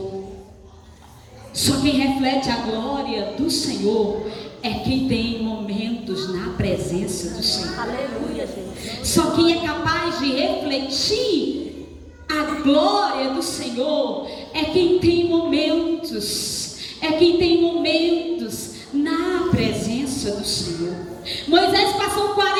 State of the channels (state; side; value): identical; both; correlation 1.00